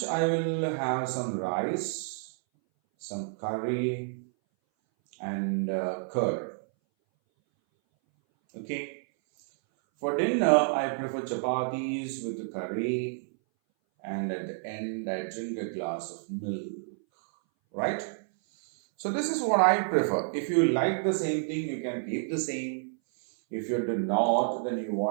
I will have some rice, some curry, and curd. Okay. For dinner, I prefer chapatis with the curry, and at the end, I drink a glass of milk. Right? So this is what I prefer. If you like the same thing, you can keep the same. If you do not, then if you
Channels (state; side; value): silent; left; 58 dB below the other